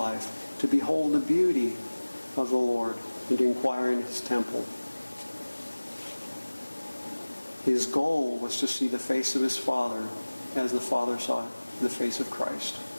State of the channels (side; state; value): both; inverted; correlation -1.00